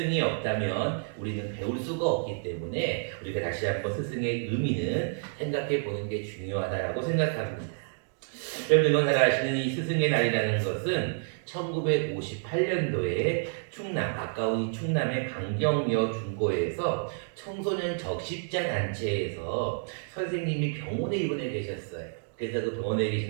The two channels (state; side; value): silent; left; 58 dB below the other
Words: 없다면 우리는 배울 수가 없기 때문에 우리가 다시 한번 스승의 의미는 생각해 보는 게 중요하다고 생각합니다. 여러분 잘 아시는 이 스승의 날이라는 것은 1958년도에 충남, 가까운 충남의 강경여 중고에서 청소년 적십자 단체에서 선생님이 병원에 입원해 계셨어요. 그래서 그 병원에